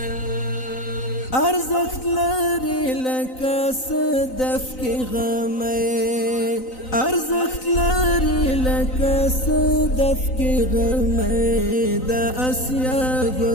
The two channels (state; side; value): late; right; 3.9 ms